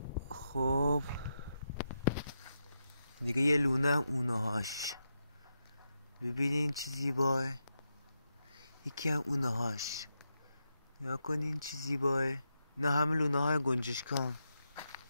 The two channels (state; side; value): inverted; both; correlation -0.85